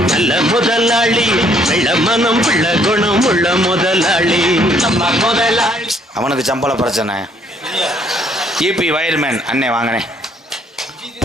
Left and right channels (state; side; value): normal; both; correlation 0.65